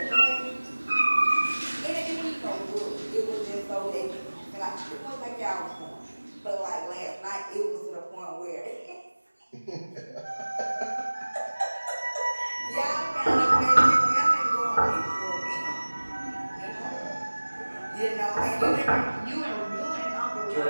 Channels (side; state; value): both; inverted; correlation -1.00